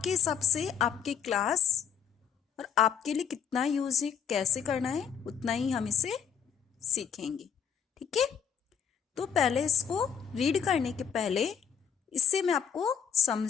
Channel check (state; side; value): quieter; right; 7.7 dB